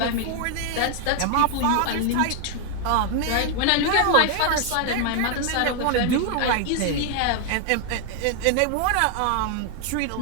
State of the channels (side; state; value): both; different; correlation 0.00